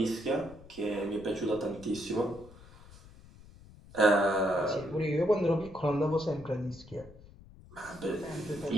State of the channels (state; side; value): noise; left; rumble, 21 dB below the sound